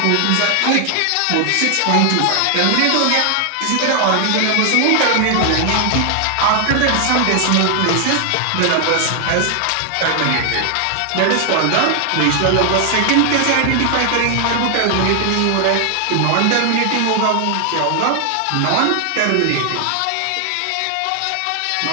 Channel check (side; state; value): both; different; correlation 0.00